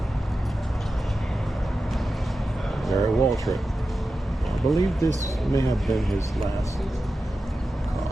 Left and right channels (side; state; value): both; normal; correlation 0.92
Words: Gary Waltrip. I believe this may have been his last car.